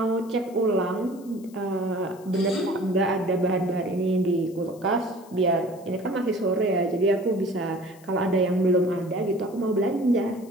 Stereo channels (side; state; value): left; noise; hiss, 26 dB below the sound